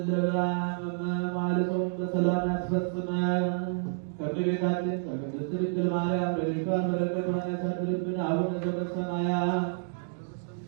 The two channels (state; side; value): silent; left; digital silence